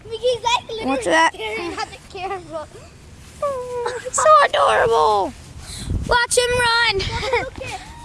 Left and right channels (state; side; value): identical; both; correlation 1.00